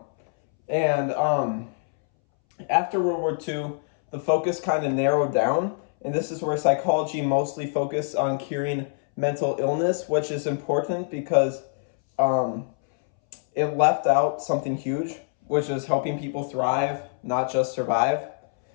And after World War II, the focus kind of narrowed down, and this is where psychology mostly focused on curing mental illness, which is important because it left out something huge, which is helping people thrive, not just survive.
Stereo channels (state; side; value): silent; right; 62 dB below the other